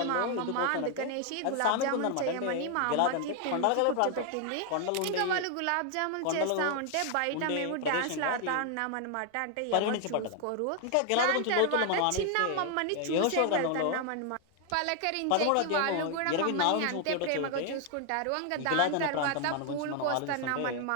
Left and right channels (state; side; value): different; both; correlation 0.00